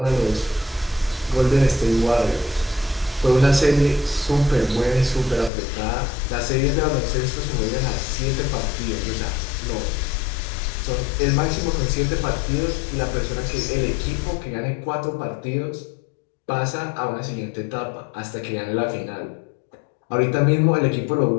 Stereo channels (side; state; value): right; drops out; at 5.5 s